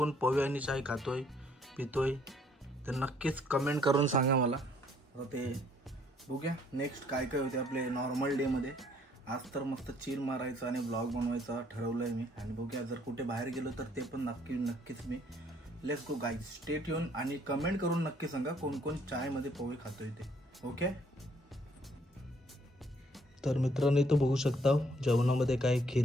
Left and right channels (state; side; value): normal; both; correlation 0.64